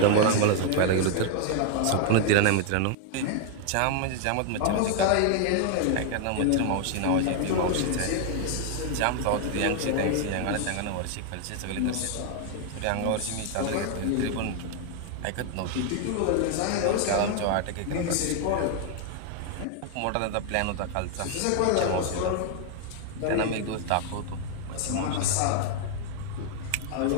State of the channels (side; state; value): both; different; correlation 0.00